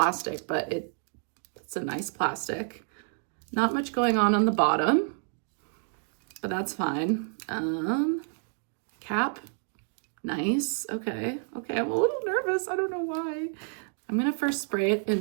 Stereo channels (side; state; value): left; silent; 58 dB below the other